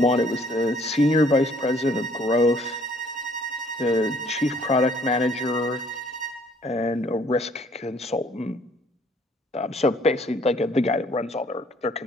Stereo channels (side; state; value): both; normal; correlation 0.61